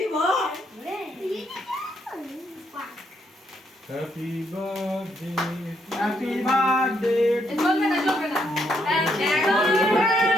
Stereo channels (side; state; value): both; normal; correlation 0.74